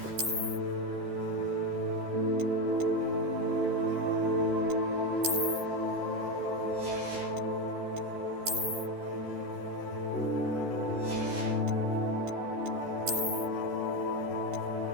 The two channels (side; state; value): left; late; 13 ms